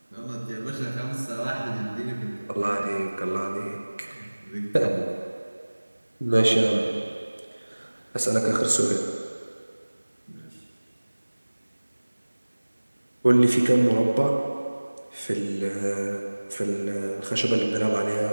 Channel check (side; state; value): both; inverted; correlation -1.00